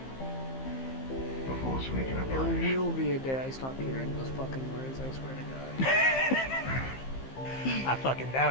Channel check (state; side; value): late; right; 15 ms